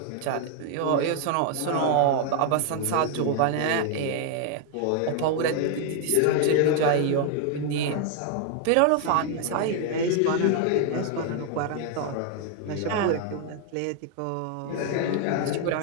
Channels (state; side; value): different; both; correlation 0.00